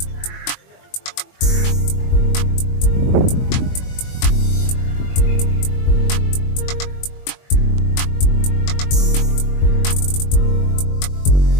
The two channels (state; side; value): late; right; 21 ms